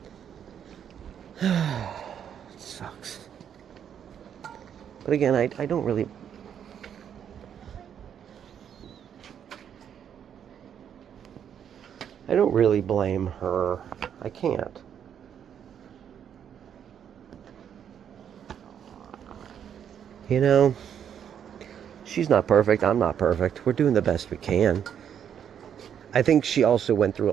it sucks. But again, I don't really blame her. I can't. You know, she's not perfect. I'm not perfect. We're doing the best we can. I think she also went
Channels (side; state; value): left; quieter; 8.7 dB